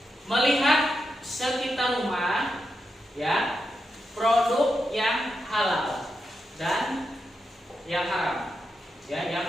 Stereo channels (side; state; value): both; normal; correlation 0.86